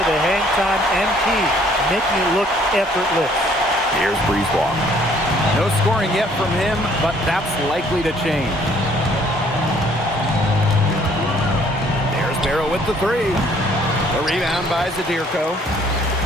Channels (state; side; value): normal; both; correlation 0.61